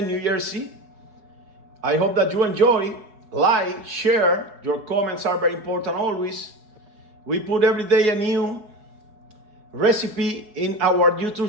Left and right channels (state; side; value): late; left; 4.7 ms